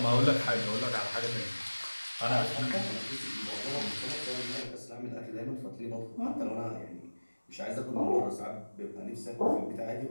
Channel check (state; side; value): inverted; both; correlation -1.00